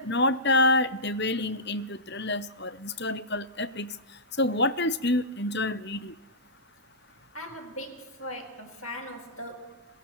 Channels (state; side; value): normal; both; correlation -0.17